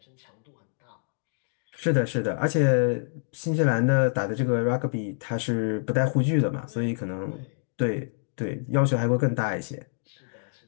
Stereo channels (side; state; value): right; silent; digital silence